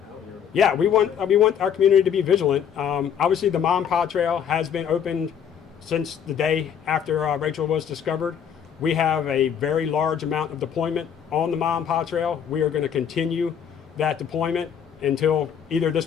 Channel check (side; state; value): right; quieter; 8.2 dB